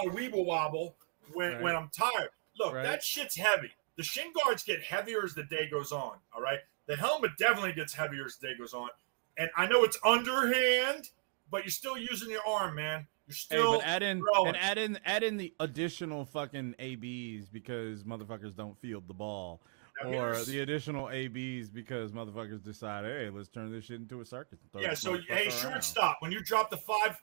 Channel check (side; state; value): left; silent; 54 dB below the other